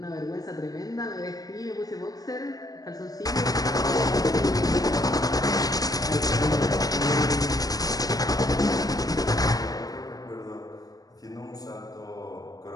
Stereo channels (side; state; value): right; late; 0.18 ms